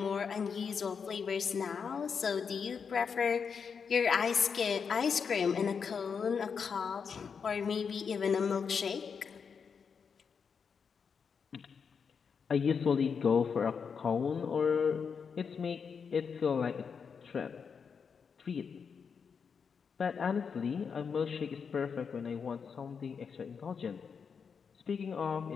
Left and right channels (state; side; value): quieter; right; 6.2 dB